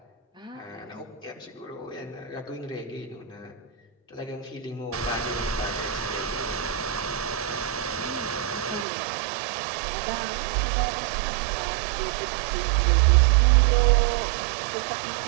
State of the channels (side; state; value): left; drops out; at 8.8 s